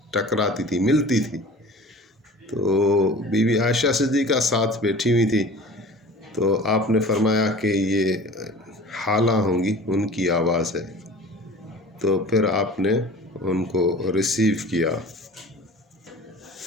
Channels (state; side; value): normal; both; correlation 0.41